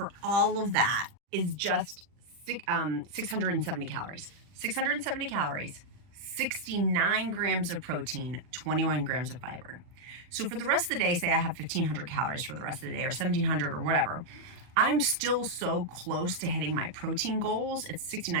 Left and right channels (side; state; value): left; late; 40 ms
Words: all of that is just 670 calories. 670 calories. 69 grams of protein, 21 grams of fiber. So for the rest of the day, say I have 1,500 calories for the rest of the day or 1,700 or whatever, I'm still so close to hitting my protein goals. It's